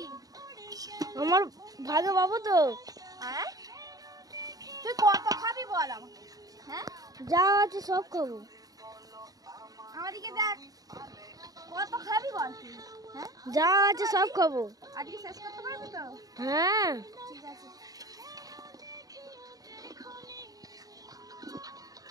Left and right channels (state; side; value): late; left; 0.18 ms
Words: আমার ভাগে বাবু তো। হ্যাঁ তুই কত খাবি বল আমাকে? হ্যাঁ যা আছে সব খাবো। আমাদিকে দেখ, কত খাবি বল তুই? হ্যাঁ যা আছে সব খাবো। আজকে শেষ করতে পারবি তো? হ্যাঁ ঠিক আছে।